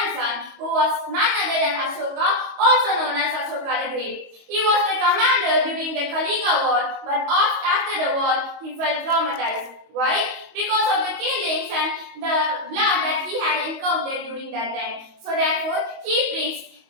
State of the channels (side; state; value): left; late; 22 ms